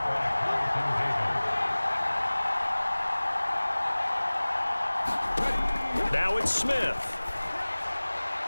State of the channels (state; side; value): inverted; both; correlation -1.00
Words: Now it's Smith.